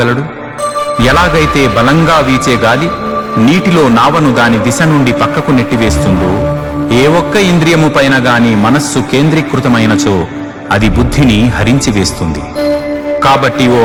ఎలాగైతే బలంగా వీచే గాలి నీటిలో నావను దాని దిశ నుండి పక్కకు నెట్టివేస్తుందో, ఏ ఒక్క ఇంద్రియము పైన గాని మనస్సు కేంద్రీకృతమైనచో అది బుద్ధిని హరించివేస్తుంది. కాబట్టి ఓ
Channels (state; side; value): identical; both; correlation 1.00